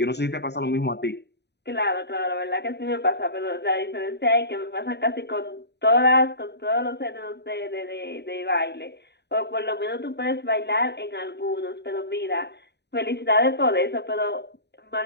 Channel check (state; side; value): late; right; 0.49 ms